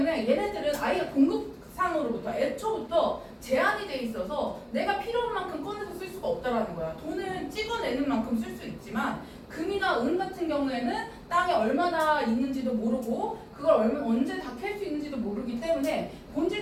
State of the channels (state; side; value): identical; both; correlation 1.00